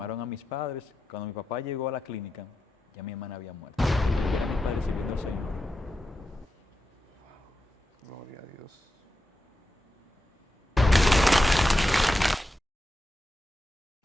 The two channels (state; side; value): normal; both; correlation 0.89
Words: a mis padres. Cuando mi papá llegó a la clínica, ya mi hermana había muerto. Y eran mis padres sirviendo al Señor. Gloria a Dios.